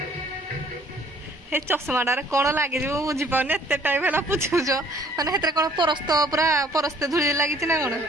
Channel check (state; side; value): normal; both; correlation 0.57